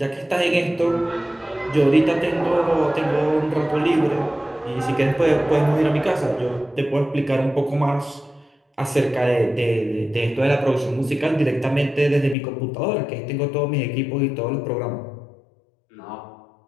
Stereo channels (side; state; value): right; drops out; at 12.4 s